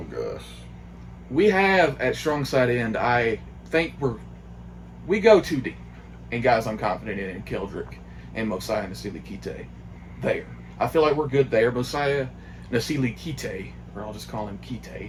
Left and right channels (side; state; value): both; identical; correlation 1.00